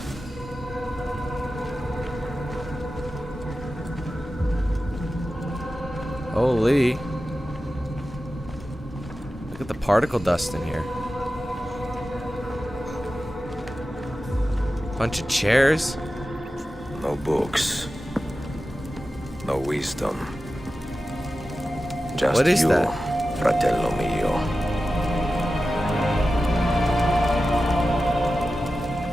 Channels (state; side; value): normal; both; correlation 0.93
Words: Holy. Look at the particle dust in here. Bunch of chairs. No books. No wisdom. Just What is you, that? fratello mio.